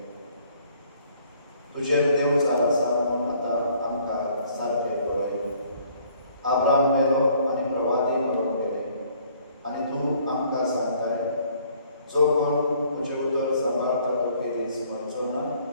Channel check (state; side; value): inverted; both; correlation -0.60